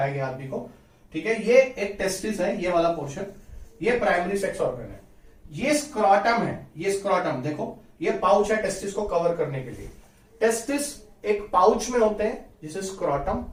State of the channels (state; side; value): identical; both; correlation 1.00